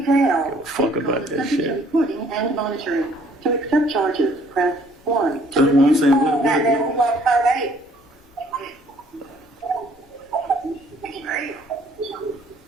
Jail. Give a fuck about that Subject to shit. recording and monitoring. To accept charges, press 1. That's what I'm saying.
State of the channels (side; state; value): both; normal; correlation 0.60